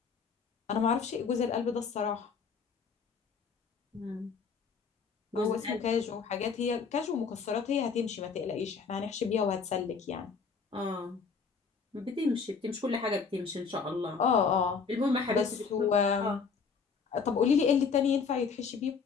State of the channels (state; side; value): quieter; right; 5.6 dB